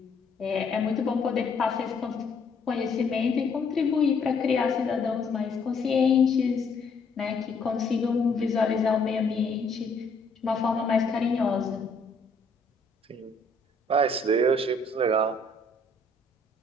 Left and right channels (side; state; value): right; quieter; 3.3 dB